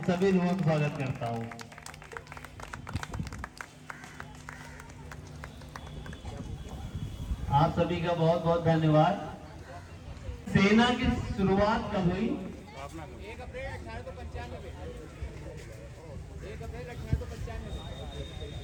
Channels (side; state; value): both; identical; correlation 1.00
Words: सभी लोगों का स्वागत करता हूं। आप सभी का बहुत बहुत धन्यवाद। सेना की शुरुआत कब हुई? 1 अप्रैल 1895। 1 अप्रैल